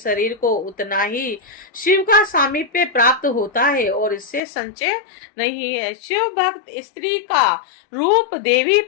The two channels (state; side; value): drops out; right; at 4.4 s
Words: को उतना ही शिव का सामीप्य प्राप्त होता है और इससे संचय नहीं है। शिव भक्त स्त्री का रूप देवी